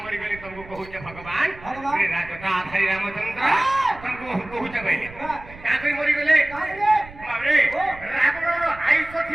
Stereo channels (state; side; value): noise; right; rumble, 18 dB below the sound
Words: মরি গলি তমকু কহুছে ভগবান রাজটা আধারি রামচন্দ্র তমকু কহুছে বলে কাকে মরি গলে বাবরে রাবণর আয়ুষ